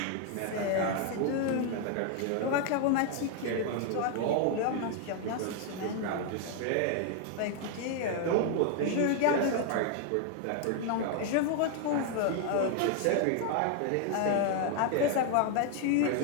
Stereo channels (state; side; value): different; both; correlation 0.00